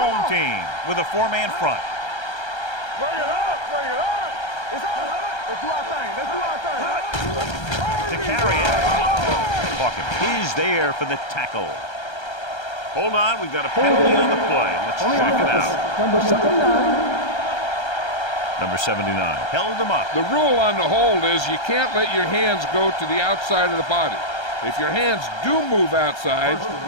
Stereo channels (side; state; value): right; late; 1.3 ms